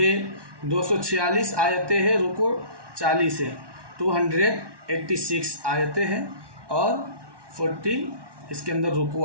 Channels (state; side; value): late; left; 1.2 ms